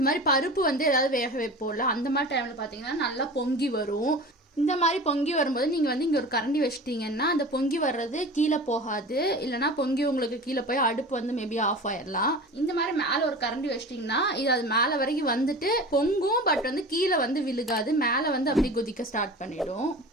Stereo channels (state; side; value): normal; both; correlation 0.35